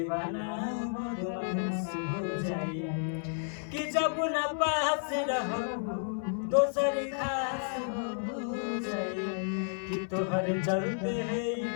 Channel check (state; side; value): silent; right; 57 dB below the other